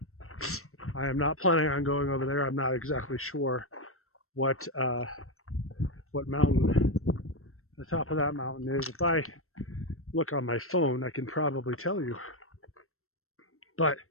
I am not planning on going over there. I'm not exactly sure what mountain the top of that mountain is. If I look on my phone, I can probably tell you. But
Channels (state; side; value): late; right; 0.63 ms